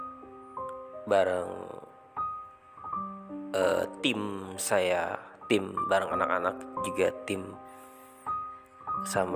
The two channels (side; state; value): both; identical; correlation 1.00